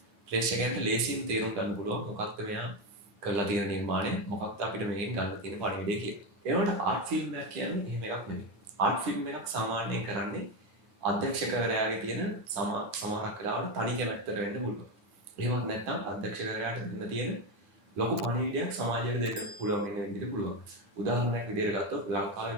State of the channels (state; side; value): late; left; 9.5 ms